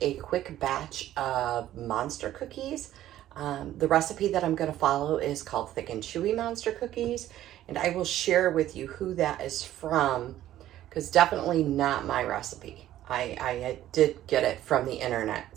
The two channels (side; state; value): left; quieter; 13.1 dB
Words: a quick batch of monster cookies. The recipe that I'm going to follow is called Thick and Chewy Monster Cookies, and I will share with you who that is from because definitely not my recipe. I did get it from the